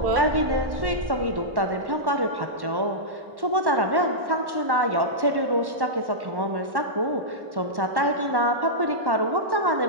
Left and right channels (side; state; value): left; late; 1.1 ms